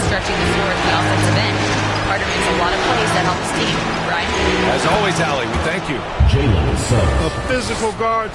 stretching the floor at the offensive end. Carter makes a lot of plays that help his team. Brian? As always, Allie, we thank you. A physical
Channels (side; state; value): both; identical; correlation 1.00